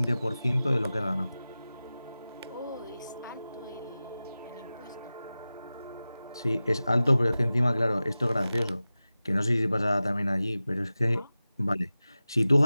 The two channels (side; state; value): both; inverted; correlation -0.96